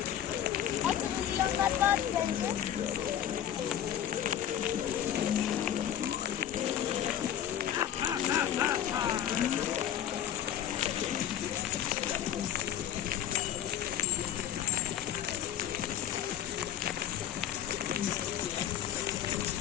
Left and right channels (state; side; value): quieter; right; 10.5 dB